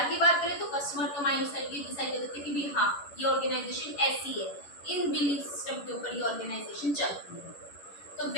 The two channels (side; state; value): right; late; 11 ms